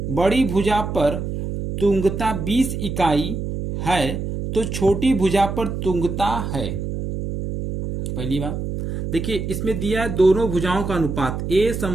बड़ी भुजा पर तुंगता 20 इकाई है, तो छोटी भुजा पर तुंगता है। पहली बात देखिए, इसमें दिया है दोनों भुजाओं का अनुपात a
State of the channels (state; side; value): noise; right; hum, 4 dB below the sound